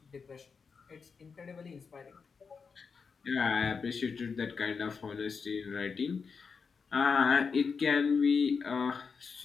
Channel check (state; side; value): quieter; right; 5.4 dB